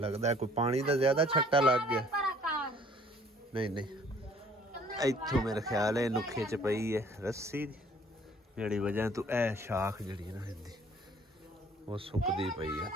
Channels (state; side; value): normal; both; correlation 0.57